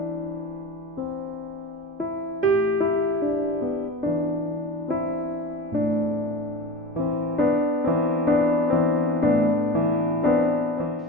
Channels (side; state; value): both; normal; correlation 0.30